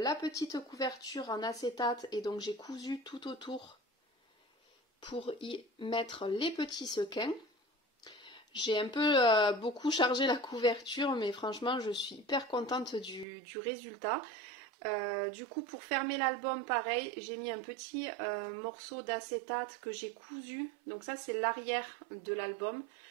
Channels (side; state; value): left; drops out; at 13.2 s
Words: petite couverture en acétate et donc j'ai cousu tout autour pour y mettre les petits sequins. J'ai un peu beaucoup chargé la couverture mais franchement je suis hyper contente du résultat. Du coup pour fermer l'album pareil j'ai mis un petit morceau d'acétate que j'ai cousu, donc ça c'est l'arrière de l'album,